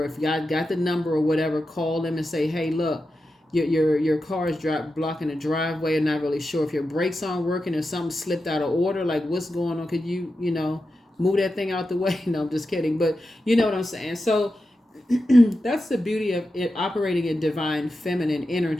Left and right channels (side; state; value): both; normal; correlation 0.90